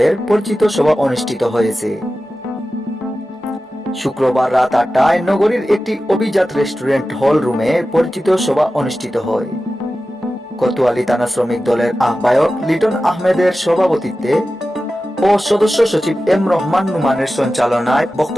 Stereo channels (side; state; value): both; normal; correlation 0.94